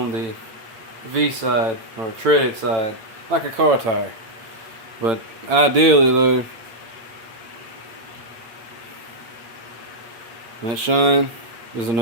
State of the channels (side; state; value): left; late; 8.7 ms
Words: the V side or treaded side, like a car tire. But ideally though, that shine is a